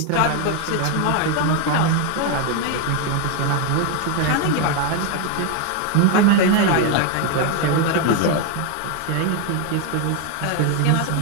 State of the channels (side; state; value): both; different; correlation 0.01